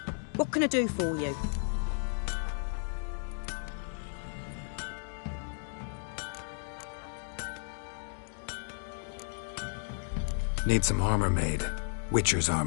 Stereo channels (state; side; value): silent; right; digital silence